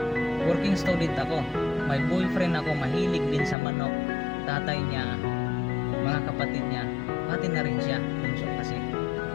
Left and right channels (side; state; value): right; drops out; at 3.6 s